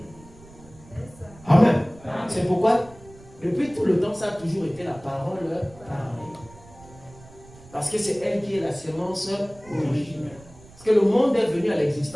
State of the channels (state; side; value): noise; right; rumble, 22 dB below the sound